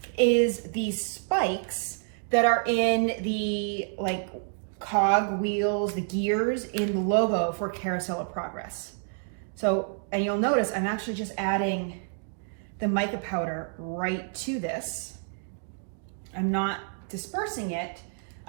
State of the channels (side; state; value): left; silent; digital silence